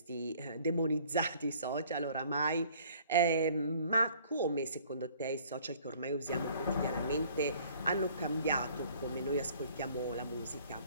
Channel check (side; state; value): both; inverted; correlation -0.56